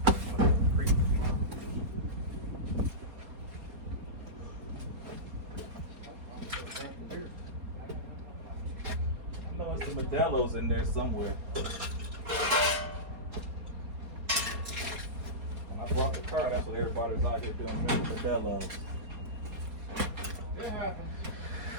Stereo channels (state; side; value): late; left; 4.3 ms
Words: I know there's some Modelo's in there somewhere. When I brought the car, that's what everybody's out here doing, Modelo's. It happens.